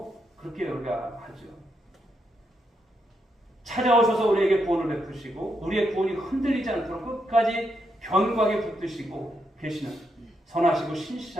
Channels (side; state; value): both; normal; correlation 0.80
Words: 그렇게 우리가 하죠. 찾아오셔서 우리에게 구원을 베푸시고 우리의 구원이 흔들리지 않도록 끝까지 견고하게 붙드시고 계시는 선하시고